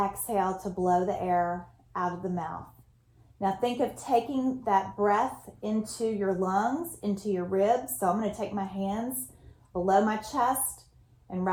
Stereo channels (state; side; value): identical; both; correlation 1.00